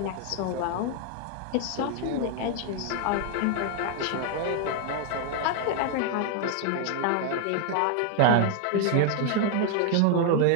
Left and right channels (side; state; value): both; different; correlation 0.00